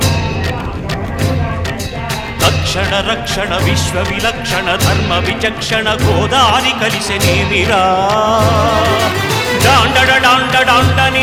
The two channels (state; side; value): identical; both; correlation 1.00